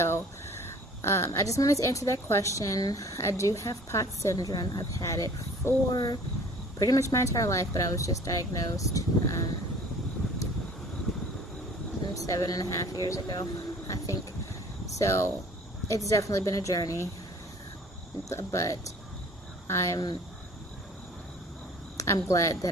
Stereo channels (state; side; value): normal; both; correlation 0.50